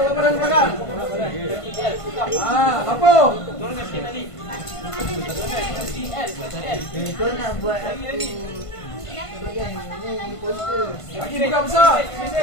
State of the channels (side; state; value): right; late; 1.5 ms